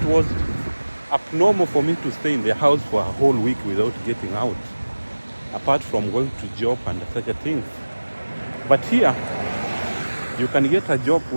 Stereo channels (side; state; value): both; inverted; correlation -1.00